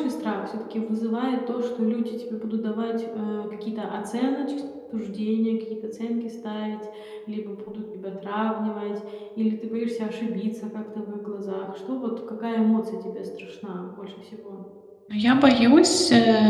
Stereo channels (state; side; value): identical; both; correlation 1.00